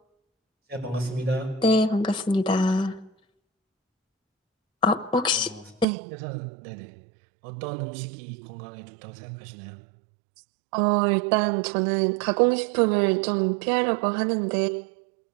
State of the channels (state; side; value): drops out; left; at 5.9 s